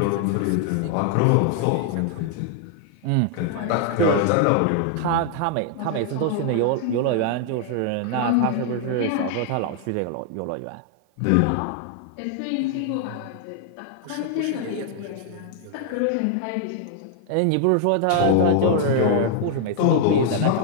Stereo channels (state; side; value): different; both; correlation 0.00